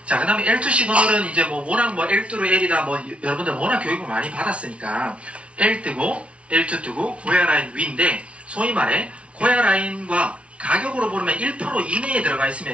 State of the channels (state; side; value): late; left; 0.061 ms